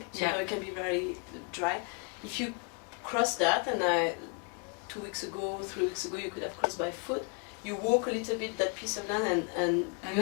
so it can be very dry. If you cross that, and 2 weeks ago, 3 weeks ago, you could have crossed by foot. You walk a little bit that piece of land, and you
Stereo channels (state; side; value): quieter; right; 34.8 dB